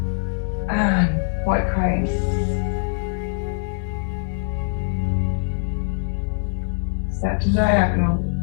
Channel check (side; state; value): right; silent; 58 dB below the other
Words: And white crane. Step to diagonal,